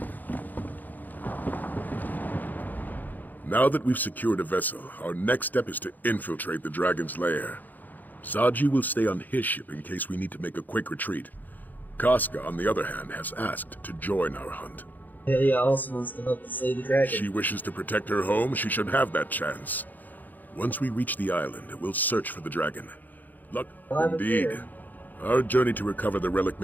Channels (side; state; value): right; late; 0.084 ms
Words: Now that we've secured a vessel, our next step is to infiltrate the dragon's lair. Zaji will stay on his ship in case we need to make a quick retreat. Casca, on the other hand, has asked to join our hunt. Helia also wants to help us slay the dragon. She wishes to protect her home, she should have that chance. Once we reach the island, we'll search for the dragon. Luck, indeed. Our journey to recover the relic